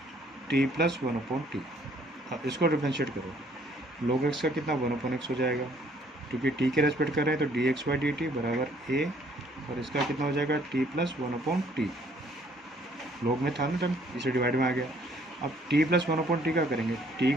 t plus 1/t। इसको डिफ्रेंशिएट करो, log x का कितना 1/x हो जाएगा, क्योंकि t के रेस्पेक्ट कर रहे हैं तो dx/dt बराबर a, और इसका कितना हो जाएगा t प्लस 1/t। log में था ना टर्म, इसे डिवाइड में आ गया। अब t प्लस 1/t का करेंगे, t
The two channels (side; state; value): both; normal; correlation 0.62